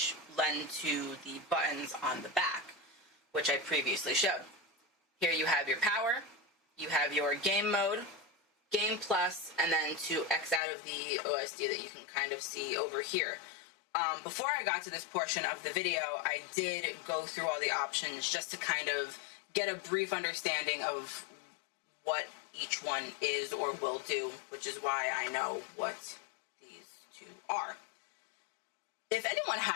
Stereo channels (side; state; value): right; drops out; at 10.6 s